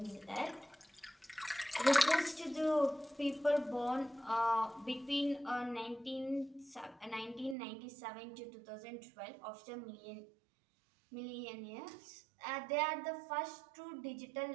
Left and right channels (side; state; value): left; drops out; at 7.6 s